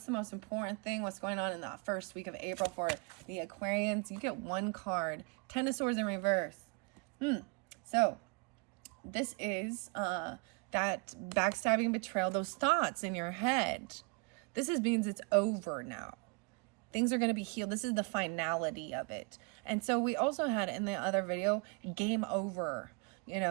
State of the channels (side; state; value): left; quieter; 32.1 dB